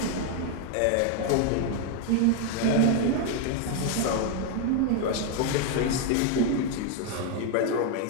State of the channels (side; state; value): both; different; correlation 0.01